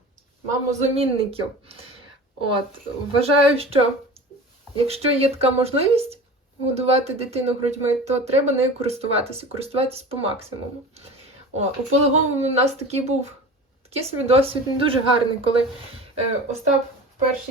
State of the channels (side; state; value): both; normal; correlation 0.36